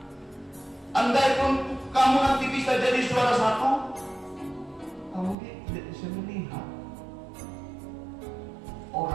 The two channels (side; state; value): left; drops out; at 5.4 s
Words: andaikan kamu nanti bisa jadi juara satu, kamu tidak bisa melihat